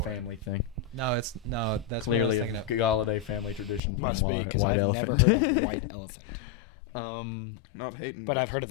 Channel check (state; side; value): drops out; right; at 3.8 s